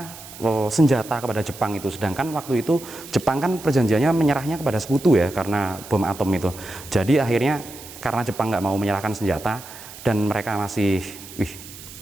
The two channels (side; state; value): right; noise; hiss, 16 dB below the sound